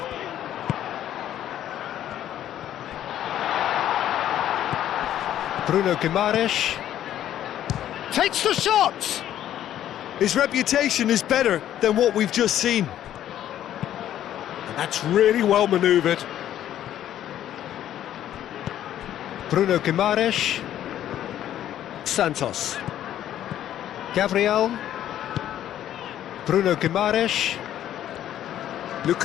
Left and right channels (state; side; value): quieter; right; 11.5 dB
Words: Bruno Guimaraes takes the shot! His reputation is better than what we've just seen. And that's really well manoeuvred. Bruno Guimaraes. Santos. Gabriel. Bruno Guimaraes.